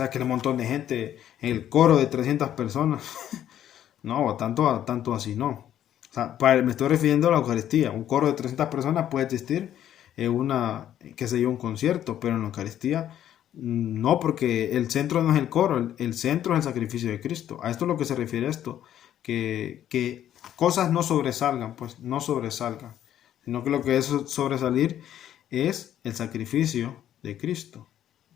que un montón de gente en el coro de 300 personas. No, tanto así no. O sea, me estoy refiriendo a la Eucaristía. Un coro de 300 personas puede existir en qué sé yo, un concierto, pero en la Eucaristía no, porque el centro no es el coro, el centro es el sacrificio de Cristo. A esto es lo que se refiere esto, que cosas no sobresalgan, pues no sobresalgan, sino que lo que es sobresalir es el sacrificio de Cristo.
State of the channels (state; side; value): quieter; right; 11.1 dB